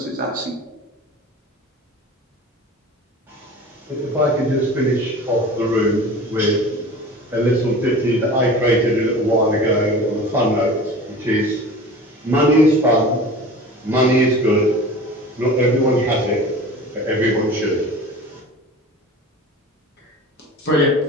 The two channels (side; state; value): both; normal; correlation 0.38